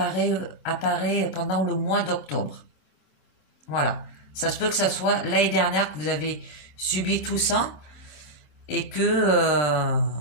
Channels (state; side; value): late; right; 27 ms